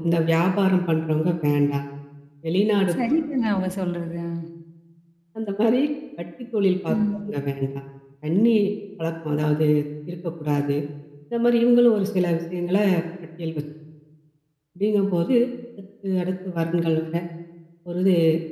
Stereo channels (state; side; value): identical; both; correlation 1.00